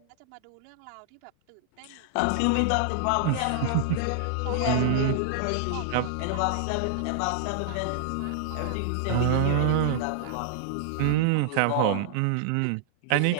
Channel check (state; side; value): different; both; correlation -0.01